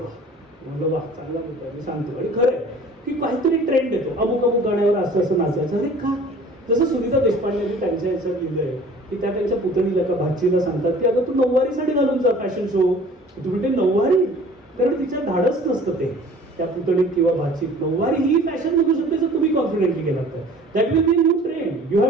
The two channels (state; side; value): normal; both; correlation 0.48